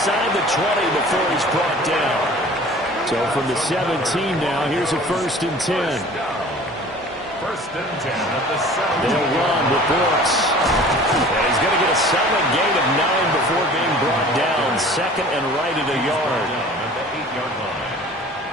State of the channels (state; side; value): normal; both; correlation 0.46